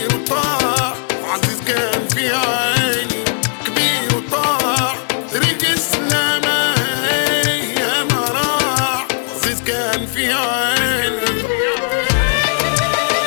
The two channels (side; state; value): right; silent; digital silence